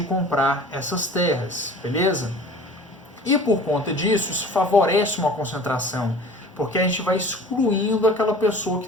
comprar essas terras, beleza? E por conta disso, isso favorece uma concentração, porque a gente vai excluindo aquela pessoa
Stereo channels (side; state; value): both; normal; correlation 0.44